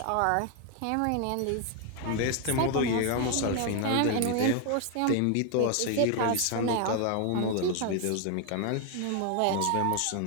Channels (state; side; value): different; both; correlation 0.01